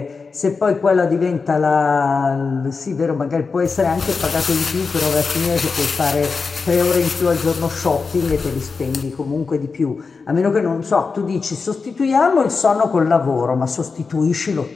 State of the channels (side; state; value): right; quieter; 4.7 dB